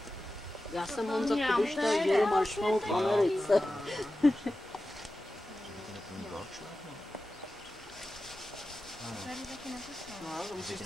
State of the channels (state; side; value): normal; both; correlation 0.94